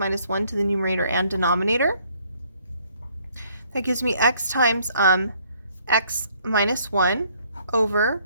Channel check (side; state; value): both; inverted; correlation -0.64